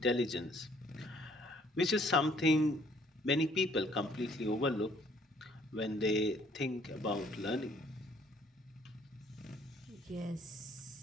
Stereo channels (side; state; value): both; normal; correlation 0.62